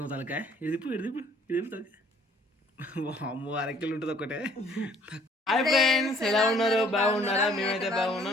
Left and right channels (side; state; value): both; normal; correlation 0.58